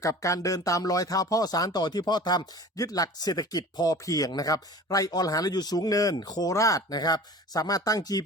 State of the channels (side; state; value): both; normal; correlation 0.41